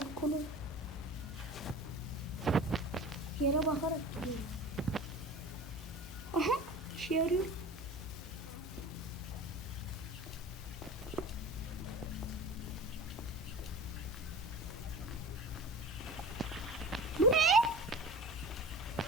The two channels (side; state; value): both; normal; correlation 0.36